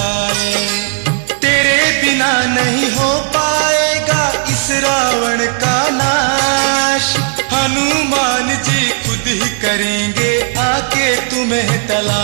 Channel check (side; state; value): left; silent; 56 dB below the other